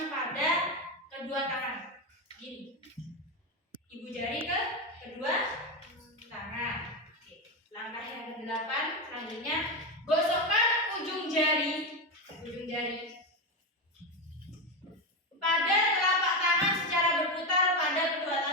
pada kedua tangan. Gini. Ibu jari ke kedua tangan. Oke. Langkah yang ke-8 selanjutnya, gosokkan ujung jari pada telapak tangan secara berputar pada kedua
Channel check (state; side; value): normal; both; correlation 0.13